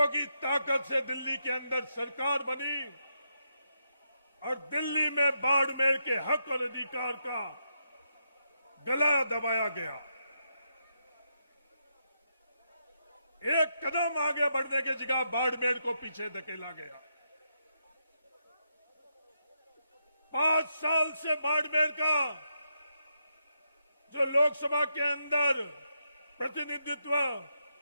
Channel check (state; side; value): inverted; both; correlation -0.82